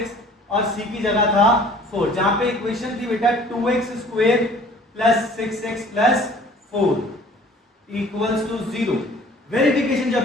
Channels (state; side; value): normal; both; correlation 0.51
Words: और c की जगह था 4। जहां पे इक्वेशन थी बेटा 2x square plus 6x plus 4 equals to 0। Verification